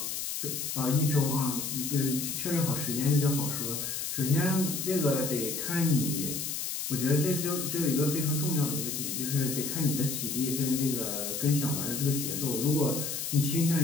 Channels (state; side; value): noise; left; hiss, 3 dB below the sound